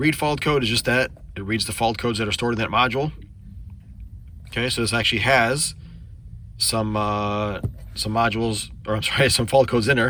fault code is just that. It reads the fault codes that are stored in that module. Okay, so this actually has some modules, or I'm sorry, some fault codes in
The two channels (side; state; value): both; identical; correlation 1.00